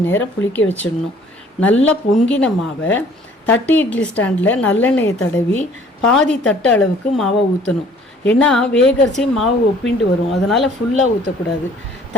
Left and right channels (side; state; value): both; normal; correlation 0.56